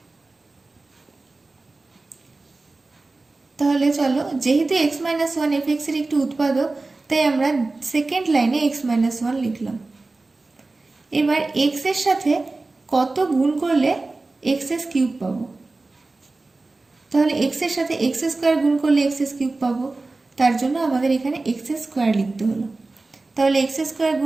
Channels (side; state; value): left; quieter; 3.4 dB